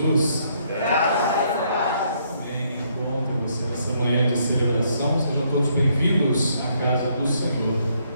Graças a Deus. Amém. Bom ter você nessa manhã de celebração. Sejam todos bem-vindos à casa do Senhor.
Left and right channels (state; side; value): inverted; both; correlation -0.71